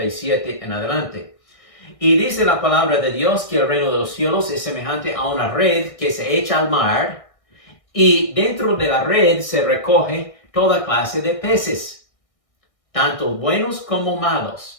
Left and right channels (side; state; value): right; late; 1.6 ms